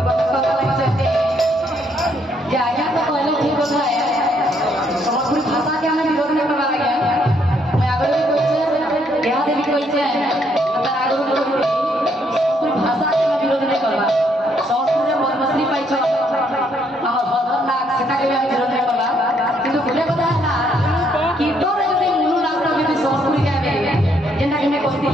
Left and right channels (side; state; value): both; normal; correlation 0.71